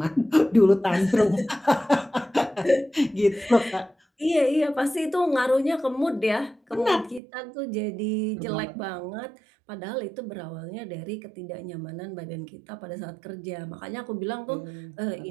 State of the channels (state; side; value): drops out; left; at 7.2 s